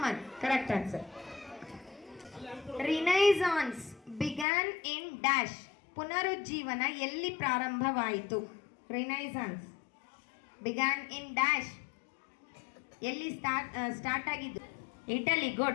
Correct answer. Renaissance began in dash? ಪುನರುಜ್ಜೀವನ ಎಲ್ಲಿ ಪ್ರಾರಂಭವಾಯಿತು? Renaissance began in dash? ಎಲ್ಲಿ start ಆಗಿದ್ದು? Italy.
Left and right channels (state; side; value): drops out; right; at 4.5 s